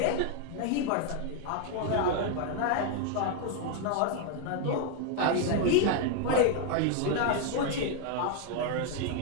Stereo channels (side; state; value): both; different; correlation 0.00